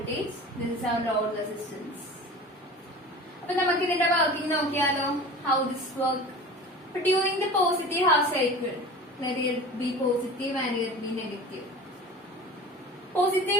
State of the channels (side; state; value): both; normal; correlation 0.37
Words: This is our load resistance. അപ്പൊ നമുക്ക് ഇതിന്റെ വർക്കിംഗ് നോക്കിയാലോ. How this work? But during the positive half cycle, let it be positive and let it be negative.